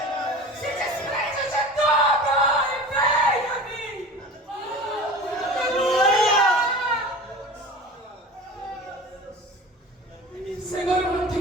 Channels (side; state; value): both; normal; correlation 0.36